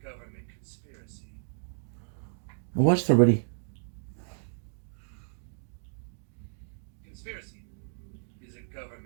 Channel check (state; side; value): silent; left; digital silence